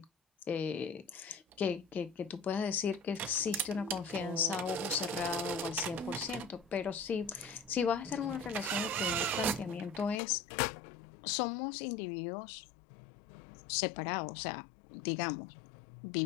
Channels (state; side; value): drops out; right; at 10.2 s